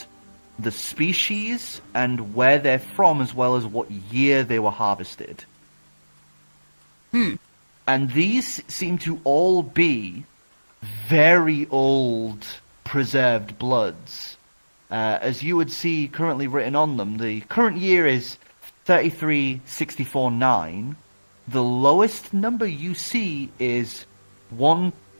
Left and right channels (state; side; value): inverted; both; correlation -1.00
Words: the species and where they're from, as well as what year they were harvested. And these seem to all be very old preserved bloods. As you would see currently written on them, the current year is 33649. The lowest number you see is